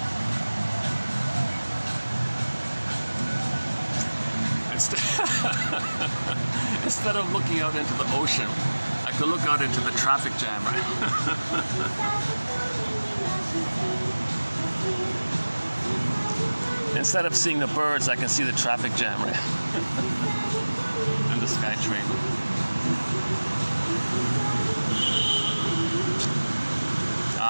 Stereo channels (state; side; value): inverted; both; correlation -1.00